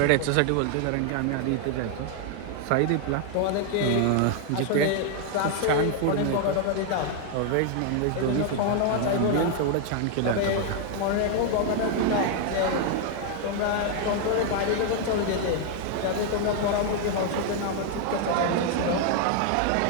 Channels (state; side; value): different; both; correlation 0.00